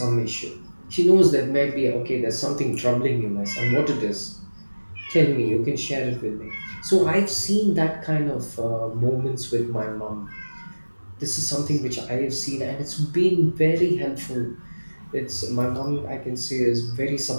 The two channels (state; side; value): inverted; both; correlation -1.00